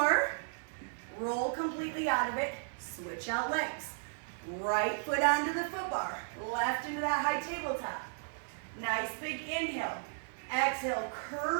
Roll completely out of it. Switch out legs. Right foot onto the foot bar. Left into that high tabletop. Nice big inhale. Exhale,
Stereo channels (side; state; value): left; silent; digital silence